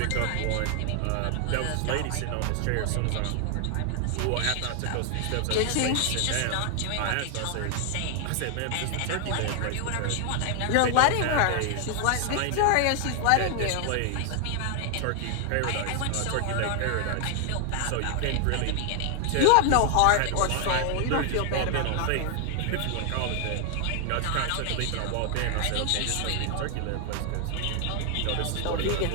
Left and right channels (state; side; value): different; both; correlation 0.00